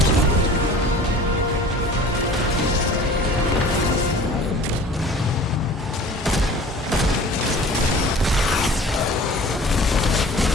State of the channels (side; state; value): both; normal; correlation 0.45